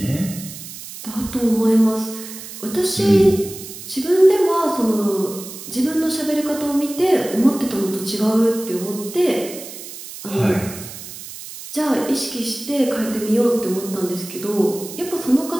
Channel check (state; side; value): noise; right; hiss, 12 dB below the sound